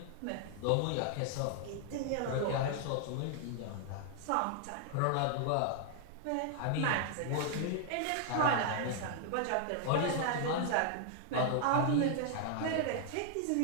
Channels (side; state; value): both; different; correlation 0.00